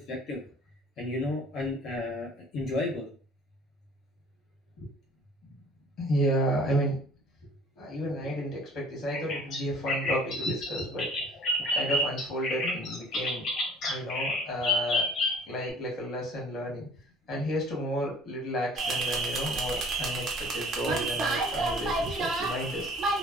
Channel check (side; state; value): both; normal; correlation 0.51